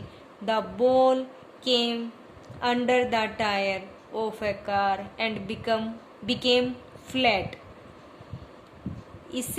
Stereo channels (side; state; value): both; identical; correlation 1.00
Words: the ball came under the tyre of a car and became flat,